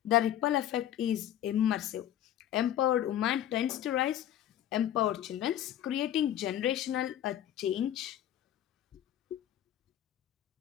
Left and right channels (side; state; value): right; quieter; 11.5 dB